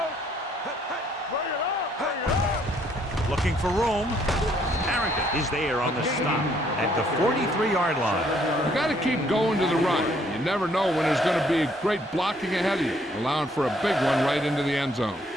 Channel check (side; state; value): both; normal; correlation 0.66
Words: Bring it up. Looking for room. Harrington is there on the stop at the 43-yard line. You got to keep going to the run. You never know when there's going to be great blocking ahead of you, allowing for a big one right into the end zone.